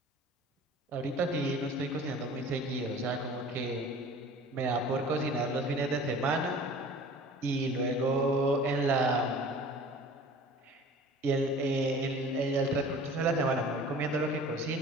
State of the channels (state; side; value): normal; both; correlation 0.44